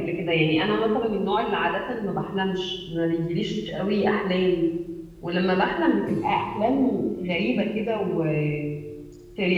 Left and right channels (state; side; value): identical; both; correlation 1.00